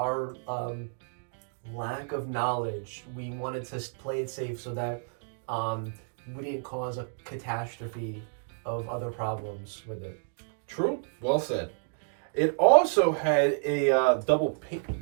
lack of knowledge, we wanted to play it safe so that we didn't cause a catastrophe of other problems with it. True, well said. It also had a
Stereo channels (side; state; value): left; silent; digital silence